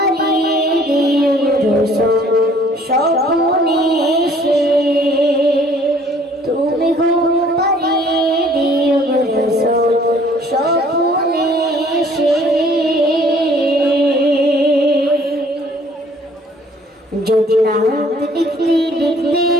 দিও রোশন স্বপ্নে এসে, তুমি ঘুম পাড়িয়ে দিও রোশন স্বপ্নে এসে। যদি নাত লিখতে লিখতে,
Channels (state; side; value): normal; both; correlation 0.57